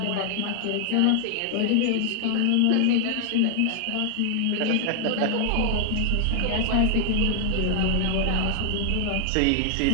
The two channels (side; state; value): both; different; correlation 0.00